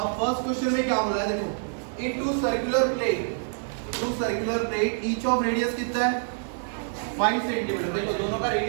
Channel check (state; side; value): silent; left; digital silence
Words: फर्स्ट क्वेश्चन में क्या बोला है, देखो in two circular plate each of radius कितना है 5 सेंटीमीटर। देखो दोनों का